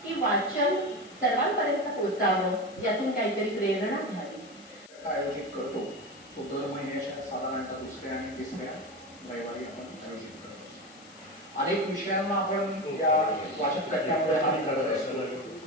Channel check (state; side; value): noise; left; hiss, 22 dB below the sound